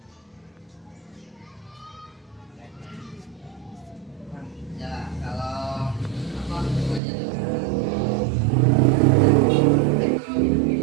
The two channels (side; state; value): left; drops out; at 7.0 s